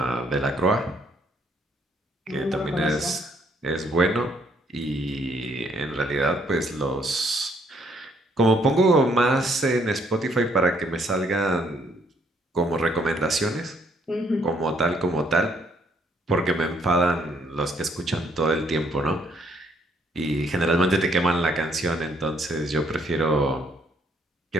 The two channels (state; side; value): normal; both; correlation 0.68